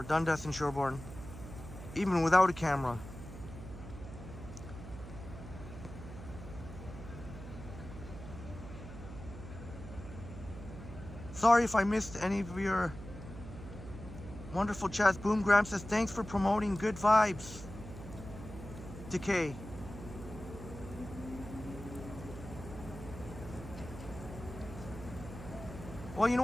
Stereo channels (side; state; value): right; noise; hum, 12 dB below the sound